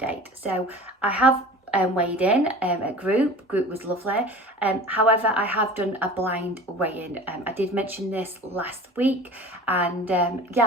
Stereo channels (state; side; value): normal; both; correlation 0.39